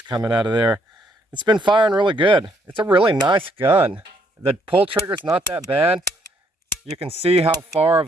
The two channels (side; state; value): both; normal; correlation 0.70